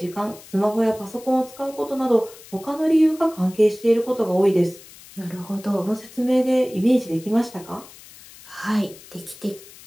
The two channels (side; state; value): left; noise; hiss, 20 dB below the sound